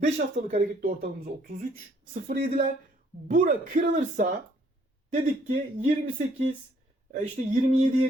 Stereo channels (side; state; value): both; normal; correlation 0.64